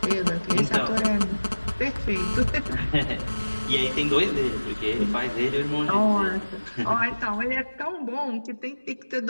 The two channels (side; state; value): both; inverted; correlation -1.00